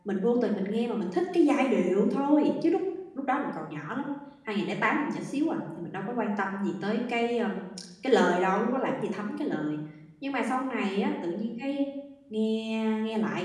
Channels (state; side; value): identical; both; correlation 1.00